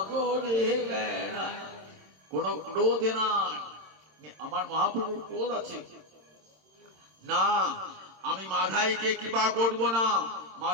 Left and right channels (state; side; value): late; left; 26 ms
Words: বেড়ায়। কোন ক্রোধে নাই। আমার মহাপ্রভুর ক্রোধ আছে না, আমি মাধাইকে কৃপা করব না।